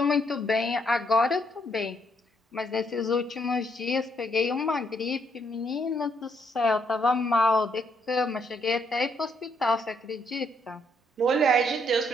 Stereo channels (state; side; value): normal; both; correlation 0.73